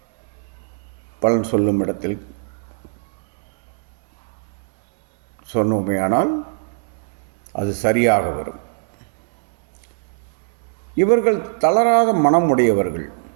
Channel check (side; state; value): left; silent; 65 dB below the other